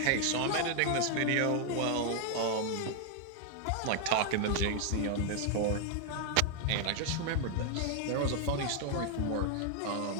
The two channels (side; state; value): both; different; correlation 0.00